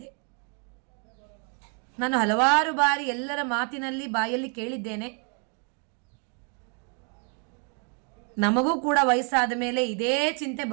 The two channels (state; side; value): quieter; left; 39.5 dB